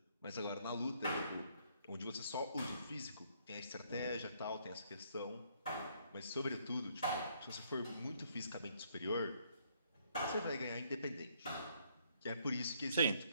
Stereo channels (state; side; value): inverted; both; correlation -0.68